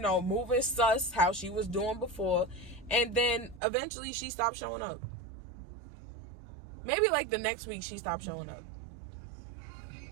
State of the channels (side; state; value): left; drops out; at 3.6 s